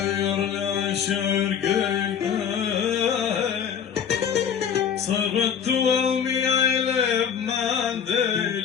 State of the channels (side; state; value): right; quieter; 7.9 dB